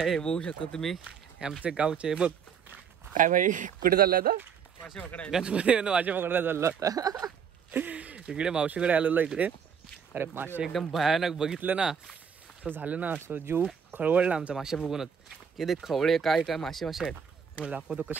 बघू शकतो तुम्ही, आमचे गावचे. बघ काय भाई, कुठे चालला आता? गणपती मासे पकडायला चालला होता. इकडे मावशीकडे आलेलो इकडे. अरे मासे एकदम भयानक बघितलं ना, असं झालं ना, असं जीव खळवळला आमचा मासे बघूनच. की ते खवळे काय काय मासे आहेत. तुम्हाला दाखवतो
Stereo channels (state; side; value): quieter; left; 7.0 dB